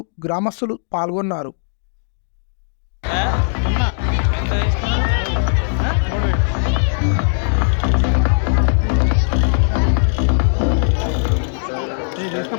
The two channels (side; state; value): right; silent; digital silence